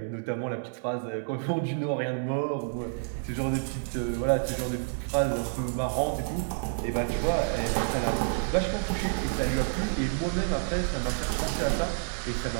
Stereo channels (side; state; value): left; silent; 59 dB below the other